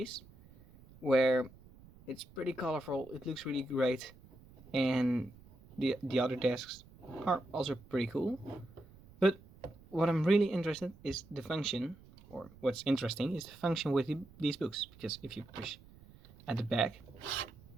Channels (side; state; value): right; noise; rumble, 22 dB below the sound